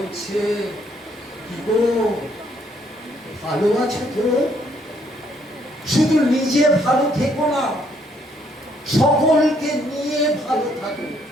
কি গো ভালো আছো তো? শুধু নিজে ভালো থেকো না, সকলকে নিয়ে ভালো থাকো।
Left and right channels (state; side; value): normal; both; correlation 0.68